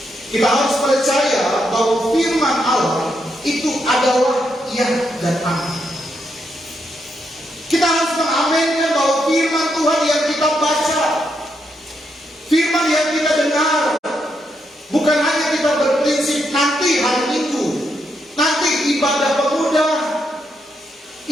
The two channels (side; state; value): both; normal; correlation 0.80